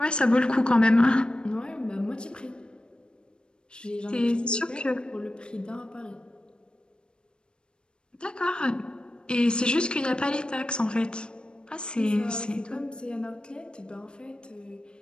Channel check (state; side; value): late; right; 0.053 ms